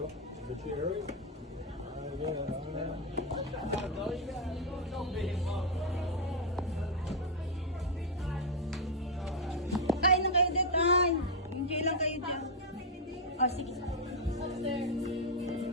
The chair. Kain na kayo dito. Ay, enjoy lang kayo dyan. Oh, sige. Medel!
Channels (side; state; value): both; normal; correlation 0.00